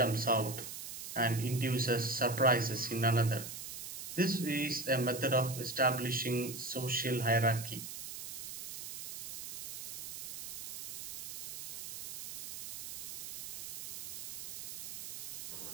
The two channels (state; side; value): noise; right; hiss, 7 dB below the sound